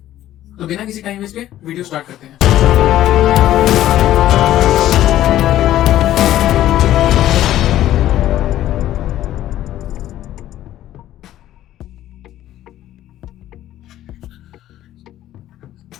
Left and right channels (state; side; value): quieter; right; 13.2 dB